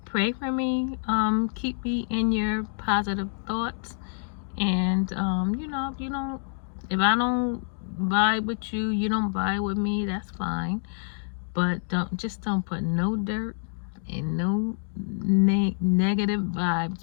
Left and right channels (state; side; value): silent; right; digital silence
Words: Pray for me. Keep me in your positive thoughts. And you know, if I don't vibe with you, you don't vibe with me, that's fine. But don't put no dirt and no negative